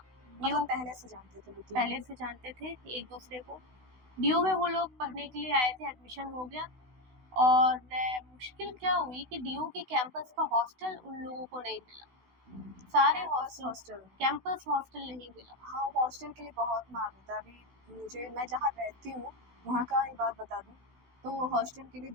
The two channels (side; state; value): left; late; 16 ms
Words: ड्यू मतलब पहले से जानते थे वो तीनों। पहले से जानते थे एक दूसरे को। ड्यू में वो लोग पढ़ने के लिए आए थे, एडमिशन हो गया। और मुश्किल क्या हुई कि डीयू के कैंपस का हॉस्टल उन लोगों को नहीं मिला। सारे campus hostel, hostel. Campus hostel नहीं मिला। हाँ, हॉस्टल के लिए बहुत मार होता है। अभी मैं जहाँ रहती हूँ वहाँ का एक बात बता दूँ, तो हॉस्टल के लिए